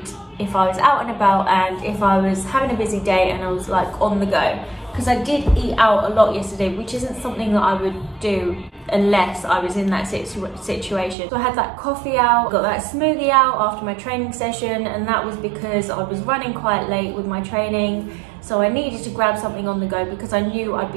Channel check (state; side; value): drops out; left; at 11.2 s